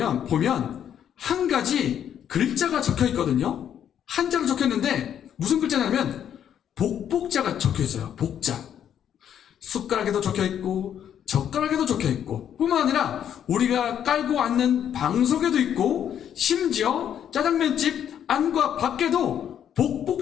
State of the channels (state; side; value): quieter; right; 9.5 dB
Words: 한 가지 글자가 적혀 있거든요. 한자로 적혀 있는데 무슨 글자냐면 복복자가 적혀 있어요. 복자. 숟가락에도 적혀 있고 젓가락에도 적혀 있고 뿐만 아니라 우리가 깔고 앉는 방석에도 있고 심지어 짜장면집 안과 밖에도